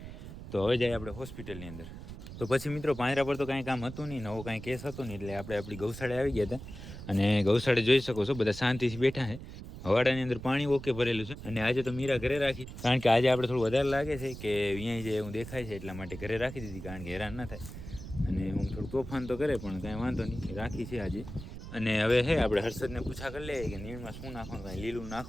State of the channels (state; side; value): noise; right; rumble, 11 dB below the sound